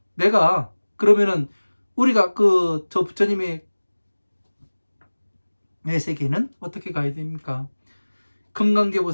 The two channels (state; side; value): inverted; both; correlation -1.00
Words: 내가 그러면은 우리가 저 부처님의 세계는 어떻게 가야 됩니까?